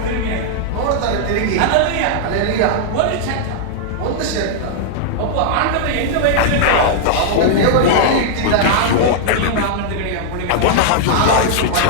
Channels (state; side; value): different; both; correlation -0.01